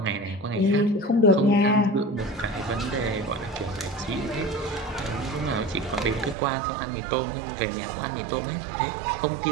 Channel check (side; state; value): left; drops out; at 6.4 s